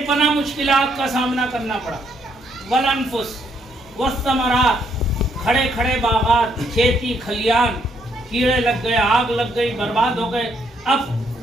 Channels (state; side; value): normal; both; correlation 0.72